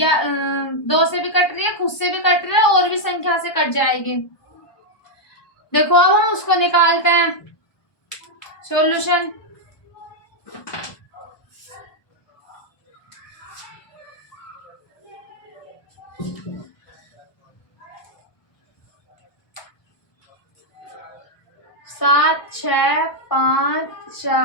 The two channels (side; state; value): right; late; 1.2 ms